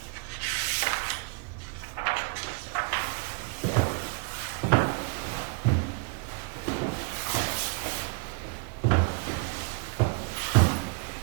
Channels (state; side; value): quieter; left; 33.1 dB